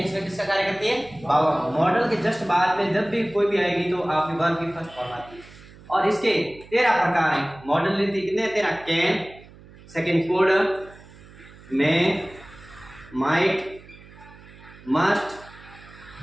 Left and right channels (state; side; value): noise; right; hum, 21 dB below the sound